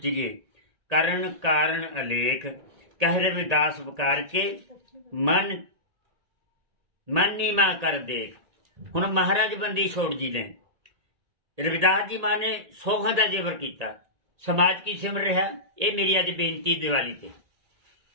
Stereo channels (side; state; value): left; late; 1.8 ms